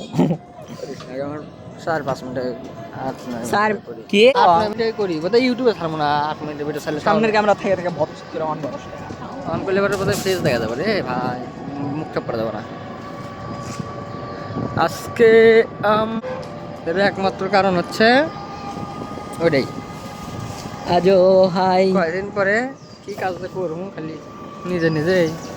আমার 4-5 মিনিটে স্যার কি 8 মিনিটে করি বোধহয়। ইউটিউবে ছাড়বো না, 8 মিনিটের ভিডিও ছাড়লে সামনের ক্যামেরা থেকে থেকে ভৎস করে অন করস। অন করলে পরে বোধহয় ফেস দেখা যাবে রে ভাই, মুখটা পড়ে যাবে না। আজকে এর একমাত্র কারণ হচ্ছে ওইটাই, আজো হাই কয়দিন পরে কি কাজ করবো খালি নিজে নিজেই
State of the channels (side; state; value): both; identical; correlation 1.00